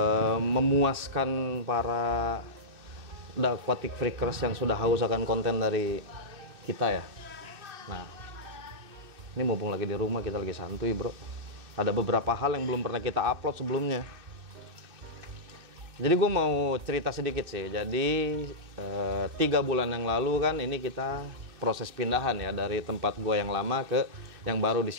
Memuaskan para The Aquatic Freakers yang sudah haus akan konten dari kita ya. Nah, ini mumpung lagi di rumah, kita lagi santuy bro. Ada beberapa hal yang belum pernah kita upload sebelumnya. Jadi gue mau cerita sedikit sih. Jadi 3 bulan yang lalu kan ini kita proses pindahan ya dari tempat gue yang lama ke yang baru di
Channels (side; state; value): left; late; 2.6 ms